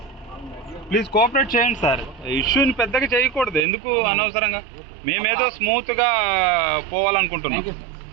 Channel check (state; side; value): drops out; left; at 3.6 s